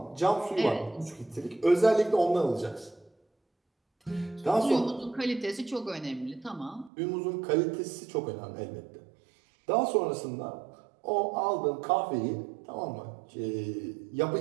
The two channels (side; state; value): left; drops out; at 6.9 s